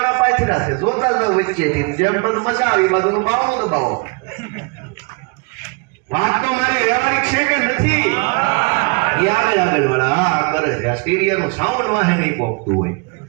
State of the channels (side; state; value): left; quieter; 30.4 dB